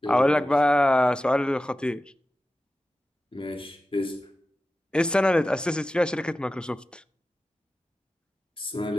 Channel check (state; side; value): normal; both; correlation 0.94